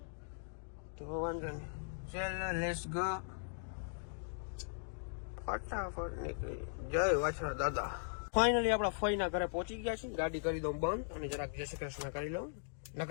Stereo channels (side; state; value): right; silent; digital silence